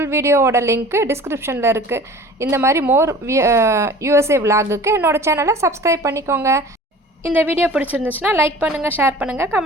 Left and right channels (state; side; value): normal; both; correlation 0.43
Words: வீடியோவோட லிங்க்கு டிஸ்கிரிப்ஷனில் இருக்குது. இந்த மாதிரி மோர் USA விலாகுக்கு என்னோடய சேனலை சப்ஸ்கிரைப் பண்ணிக்கோங்க. இந்த வீடியோ பிடிச்சிருந்துச்சுன்னா லைக் பண்ணுங்கள், ஷேர் பண்ணுங்கள்,